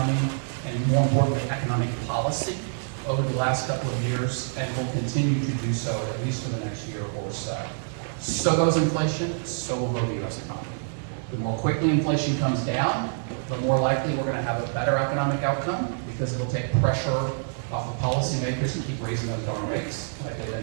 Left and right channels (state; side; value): silent; left; digital silence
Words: and more importantly, economic policy over the last couple of years, and will continue to do so at least for the next year or so. So goes inflation, so will go the U.S. economy. The more quickly inflation comes down, the more likely we're going to have a better economic outcome, because it'll take pressure off of policymakers to keep raising those darn rates like they've